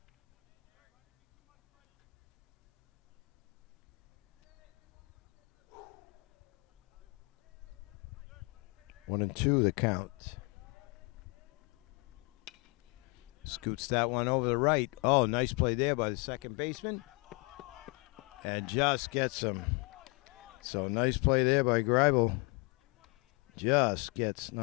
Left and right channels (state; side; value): quieter; right; 31.0 dB